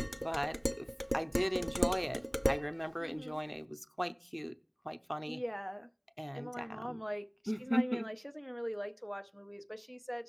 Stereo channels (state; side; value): identical; both; correlation 1.00